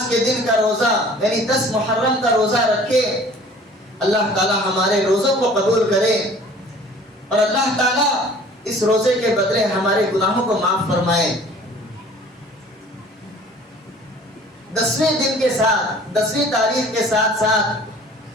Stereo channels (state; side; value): normal; both; correlation 0.49